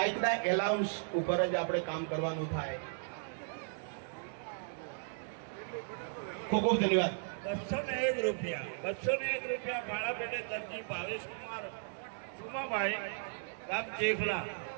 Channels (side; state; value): left; silent; digital silence